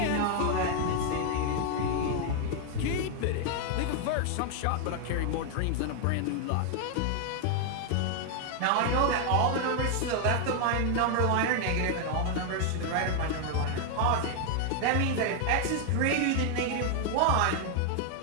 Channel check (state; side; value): different; both; correlation 0.00